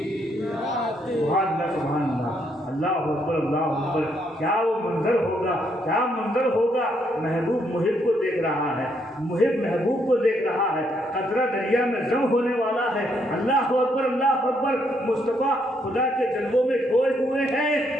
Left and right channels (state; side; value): normal; both; correlation 0.73